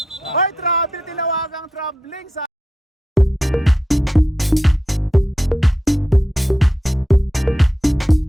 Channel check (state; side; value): normal; both; correlation 0.86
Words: Uy, tinawagang traveling sa...